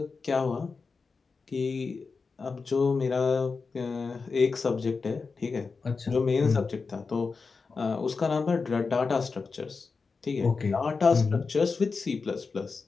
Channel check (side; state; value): right; quieter; 4.6 dB